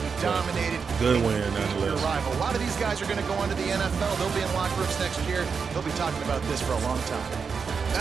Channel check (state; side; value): quieter; left; 5.7 dB